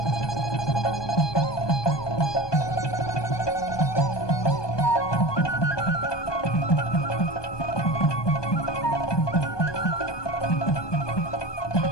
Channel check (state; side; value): late; right; 1.2 ms